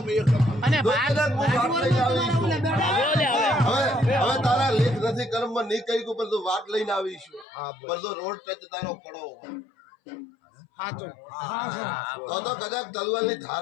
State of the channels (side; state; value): right; drops out; at 7.5 s